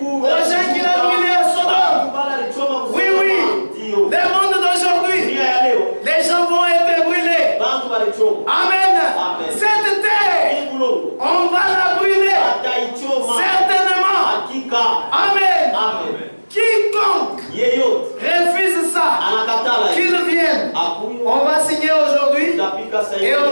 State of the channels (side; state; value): both; inverted; correlation -1.00